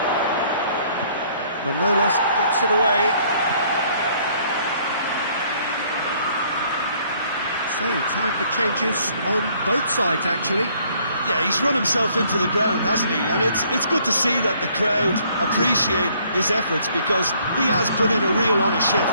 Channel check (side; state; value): both; inverted; correlation -0.63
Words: Manolas gets it away. So, time for changes on both sides, actually. Yeah, he's run himself into the ground, hasn't he? And it's good to see that the crowd appreciate his efforts, because he has put in a real honest